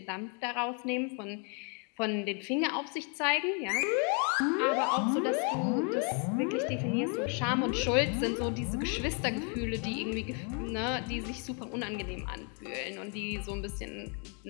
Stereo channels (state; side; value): quieter; right; 38.4 dB